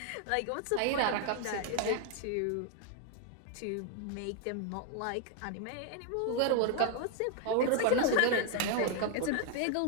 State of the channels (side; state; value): both; different; correlation 0.00